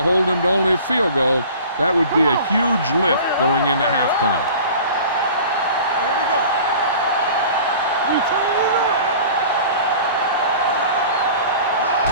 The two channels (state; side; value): inverted; both; correlation -0.43